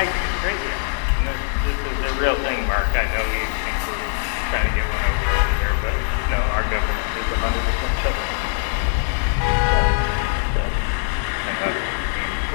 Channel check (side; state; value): right; silent; digital silence